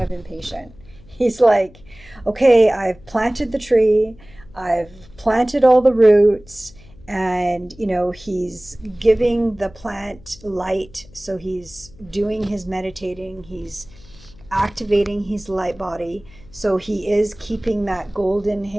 of impatient. He's like, okay, I've planted the tree, I've planted all the roots, and he's giving the plant light. So he's doing his meditating, he's activating his light body. So he is keeping that golden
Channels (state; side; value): noise; left; hum, 23 dB below the sound